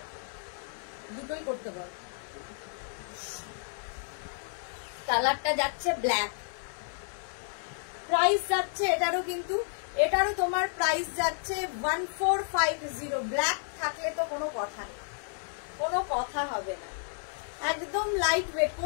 দুটোই করতে বল। কালারটা যাচ্ছে ব্ল্যাক, প্রাইস যাচ্ছে এটারও, কিন্তু এটারও তোমার প্রাইস যাচ্ছে 1450। ব্ল্যাক থাকলে তো কোনো কথা নেই, কোনো কথা হবে না। একদম লাইট ওয়েট,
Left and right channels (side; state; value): right; silent; digital silence